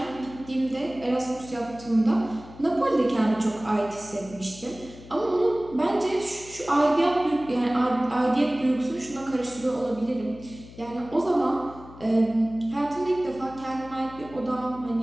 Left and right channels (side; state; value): left; noise; hum, 18 dB below the sound